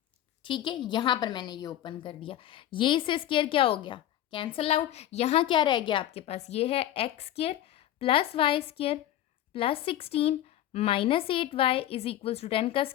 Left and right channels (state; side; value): quieter; right; 12.5 dB